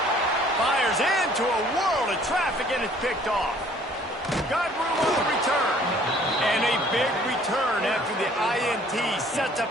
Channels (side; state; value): both; normal; correlation 0.57